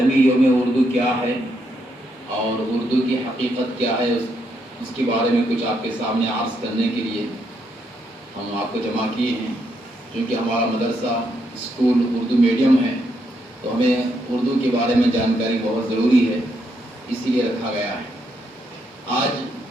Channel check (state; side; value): normal; both; correlation 0.77